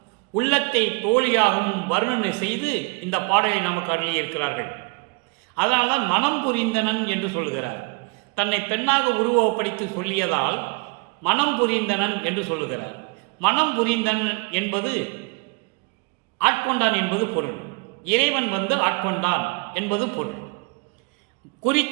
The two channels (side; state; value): left; quieter; 29.9 dB